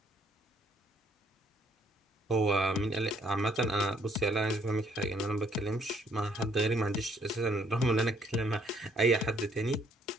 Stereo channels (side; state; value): both; normal; correlation 0.66